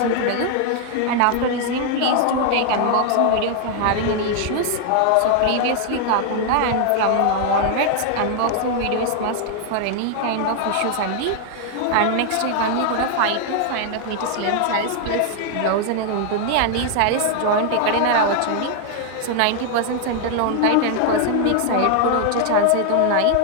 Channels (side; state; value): both; different; correlation 0.00